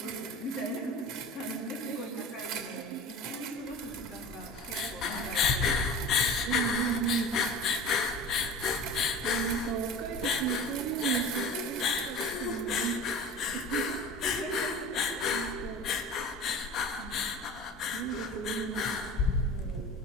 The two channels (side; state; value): both; normal; correlation 0.36